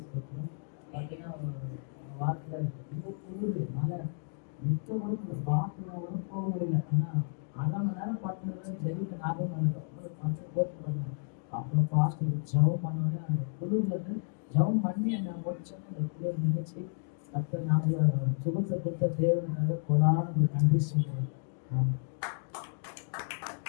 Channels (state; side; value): silent; right; digital silence